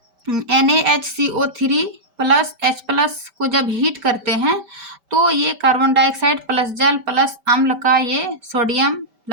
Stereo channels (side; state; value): left; late; 5.1 ms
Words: NaHCO3 प्लस H प्लस को जब हीट करते हैं तो ये कार्बन डाइऑक्साइड प्लस जल प्लस अम्ल का ये सोडियम